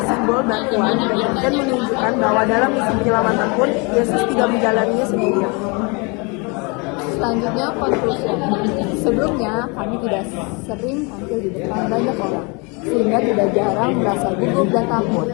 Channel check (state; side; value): quieter; right; 30.5 dB